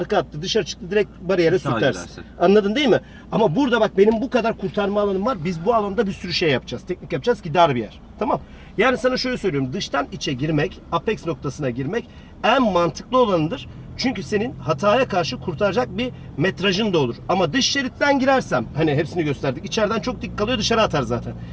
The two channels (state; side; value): identical; both; correlation 1.00